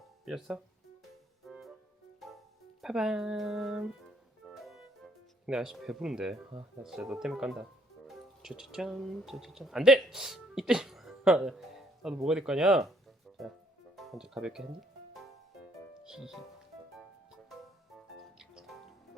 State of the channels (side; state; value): both; normal; correlation 0.66